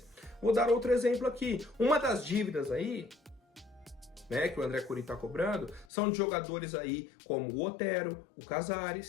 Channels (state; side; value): drops out; right; at 5.9 s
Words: Vou dar outro exemplo aqui. Uma das dívidas aí, né, que o André Cury está cobrando, são de jogadores aí como o Otero, o